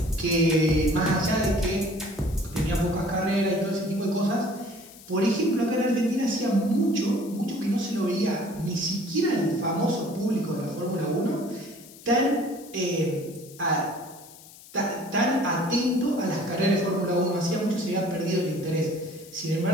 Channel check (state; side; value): noise; left; hiss, 20 dB below the sound